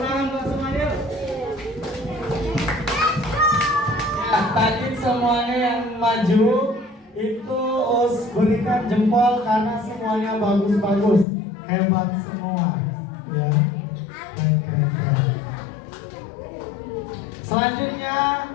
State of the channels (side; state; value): right; drops out; at 11.2 s